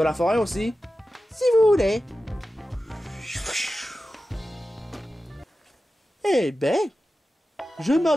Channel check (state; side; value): normal; both; correlation 0.94